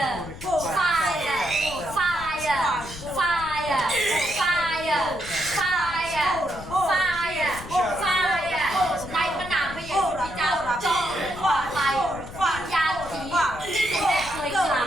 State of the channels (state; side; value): noise; left; rumble, 14 dB below the sound